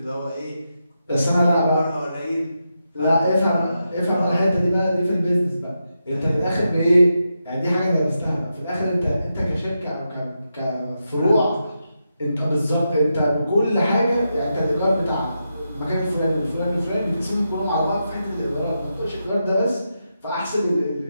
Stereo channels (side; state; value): both; inverted; correlation -0.86